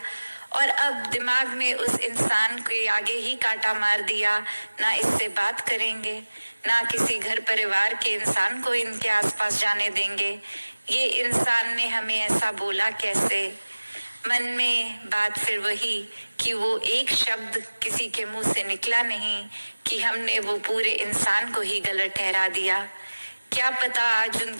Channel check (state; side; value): inverted; both; correlation -1.00